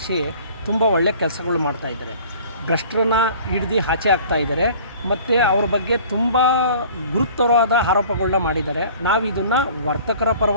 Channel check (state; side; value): inverted; both; correlation -0.48